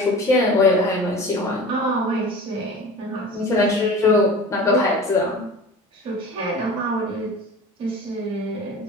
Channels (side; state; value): both; normal; correlation 0.37